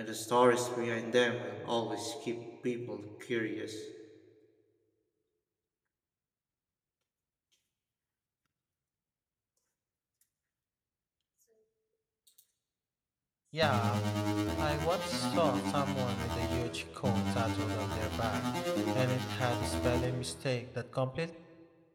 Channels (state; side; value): identical; both; correlation 1.00